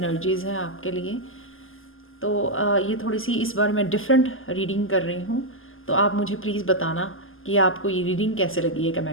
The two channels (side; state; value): right; late; 0.59 ms